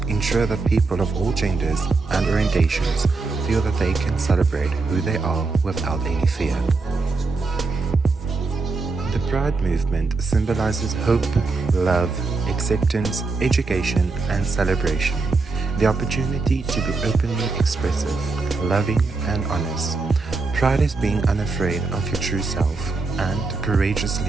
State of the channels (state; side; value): quieter; left; 3.9 dB